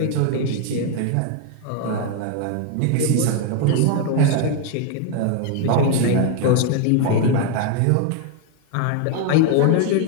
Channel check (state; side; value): different; both; correlation 0.01